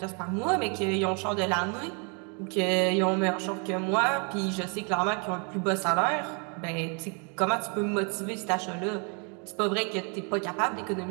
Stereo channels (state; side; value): quieter; left; 36.6 dB